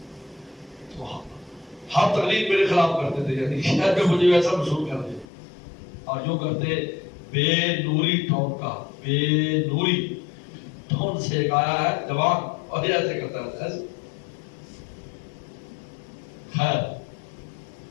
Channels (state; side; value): drops out; right; at 5.2 s